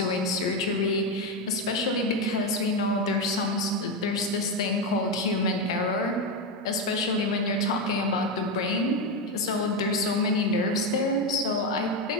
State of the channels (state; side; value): normal; both; correlation 0.10